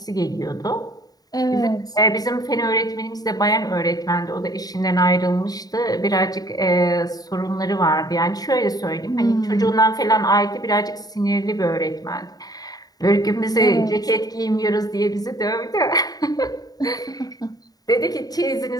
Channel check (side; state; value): right; late; 0.18 ms